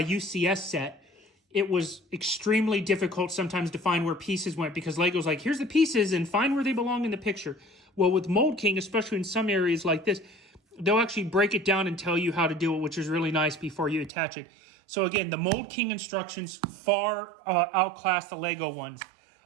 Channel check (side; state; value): left; drops out; at 14.1 s